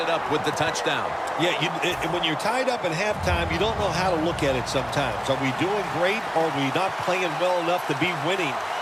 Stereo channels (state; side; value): identical; both; correlation 1.00